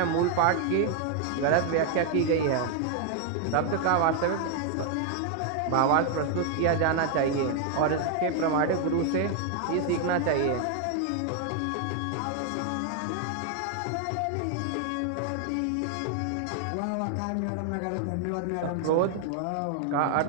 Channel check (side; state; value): both; different; correlation 0.00